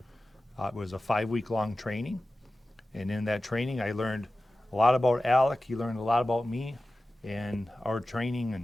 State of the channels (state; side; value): normal; both; correlation 0.95